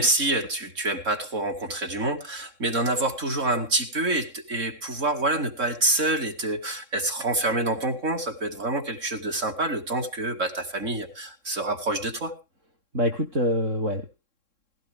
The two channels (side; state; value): left; late; 3.7 ms